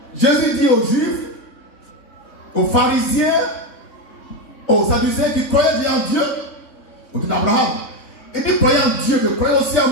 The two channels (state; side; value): late; right; 3.6 ms